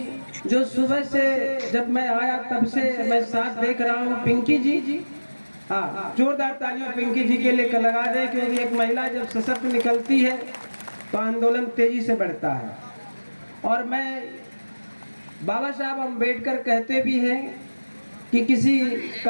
जो सुबह से जब मैं आया तब से मैं साथ देख रहा हूँ। पिंकी जी, हाँ, जोरदार तालियां पिंकी जी के लिए लगा दें, क्योंकि एक महिला जब सशक्त निकलती है तो आंदोलन तेजी से बढ़ता है। और मैं बाबा साहब अम्बेडकर कहते भी हैं कि किसी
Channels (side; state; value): both; inverted; correlation -1.00